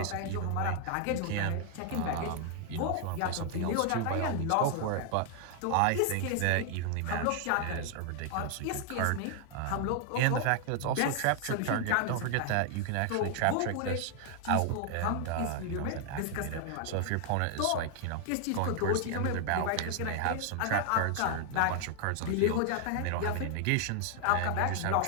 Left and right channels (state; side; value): different; both; correlation 0.00